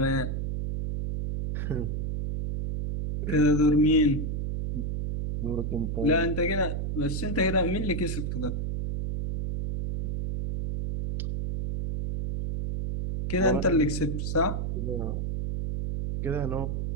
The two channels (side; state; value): right; noise; hum, 1 dB below the sound